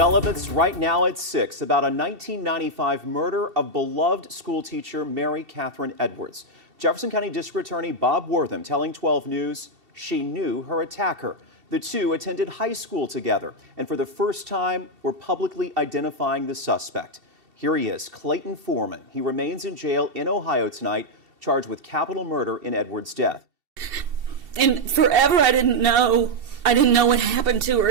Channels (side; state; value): left; late; 2.7 ms